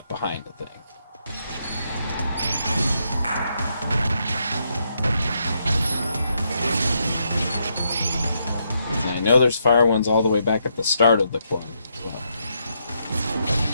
behind the thing. And I know there's fire ones all the way back at the start of the club.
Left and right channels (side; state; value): both; inverted; correlation -0.78